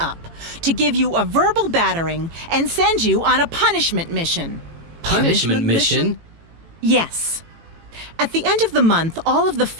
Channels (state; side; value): late; left; 18 ms